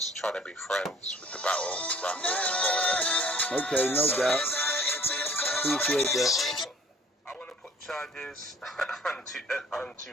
trying to be friends with the battle rappers. Okay, no doubt. Appreciate that. I want to put charges on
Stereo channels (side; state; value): both; normal; correlation 0.54